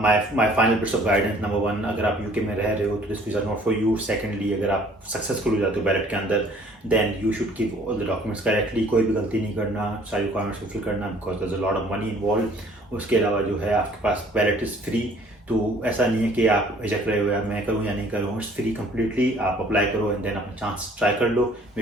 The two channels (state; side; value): normal; both; correlation 0.56